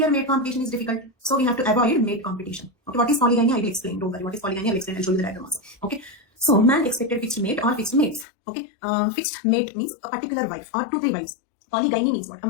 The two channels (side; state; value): right; drops out; at 8.2 s